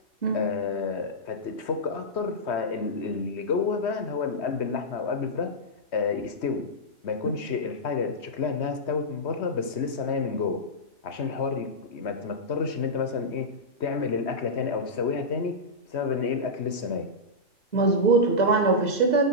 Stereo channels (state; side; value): late; right; 3.2 ms